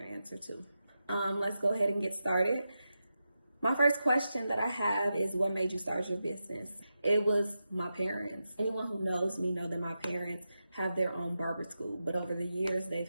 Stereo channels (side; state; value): both; inverted; correlation -0.89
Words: answer too. Let's go ahead and get started. My first question that I have is, what made you start your business? It was my parents. Anyone who knows me know that my parents have their own barber school, but over the years they've